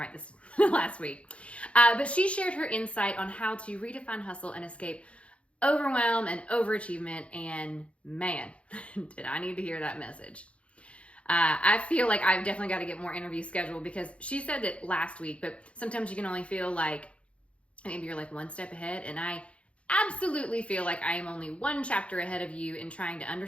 this last week. But she shared her insight on how to redefine hustle and escape overwhelm and overachievement. And man, did I need to hear that message. I feel like I've definitely got to get more interviews scheduled because she said it last week, but sometimes you can only feel like maybe you're like one step ahead. And I absolutely feel like I am only one chapter ahead of you in trying to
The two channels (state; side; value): late; right; 0.061 ms